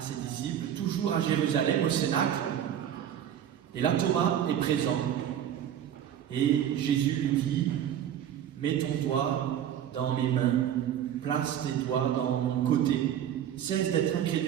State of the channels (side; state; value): left; quieter; 10.1 dB